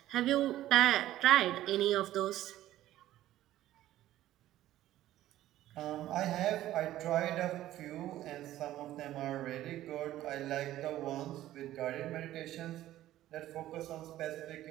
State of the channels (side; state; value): left; quieter; 14.0 dB